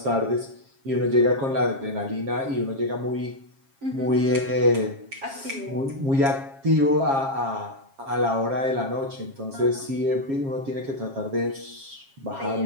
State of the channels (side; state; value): left; late; 7.4 ms